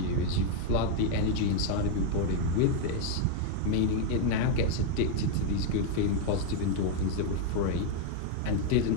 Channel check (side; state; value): both; different; correlation 0.00